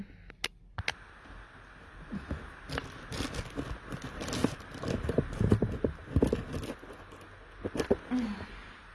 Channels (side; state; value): both; identical; correlation 1.00